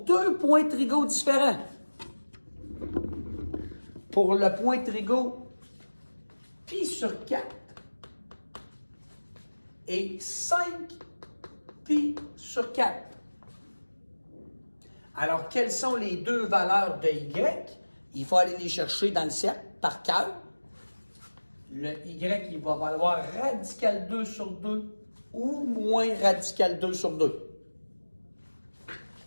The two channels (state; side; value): inverted; both; correlation -1.00